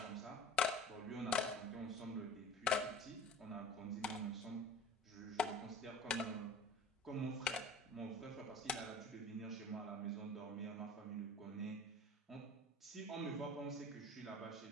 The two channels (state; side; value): normal; both; correlation 0.41